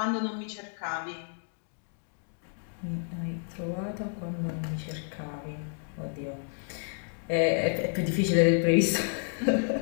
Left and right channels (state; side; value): silent; right; 58 dB below the other